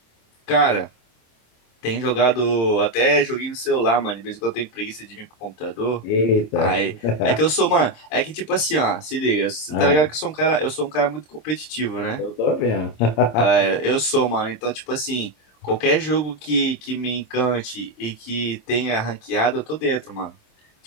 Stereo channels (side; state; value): right; late; 26 ms